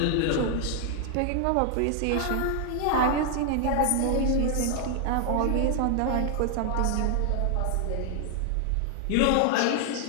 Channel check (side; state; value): both; different; correlation 0.00